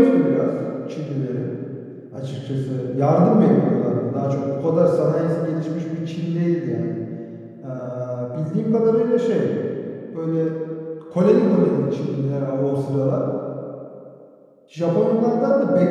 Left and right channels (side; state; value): both; identical; correlation 1.00